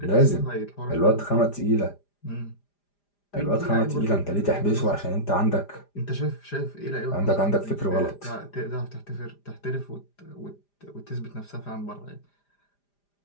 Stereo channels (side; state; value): right; late; 5.0 ms